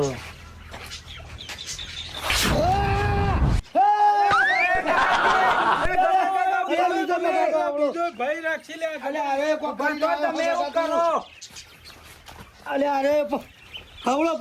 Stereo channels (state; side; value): identical; both; correlation 1.00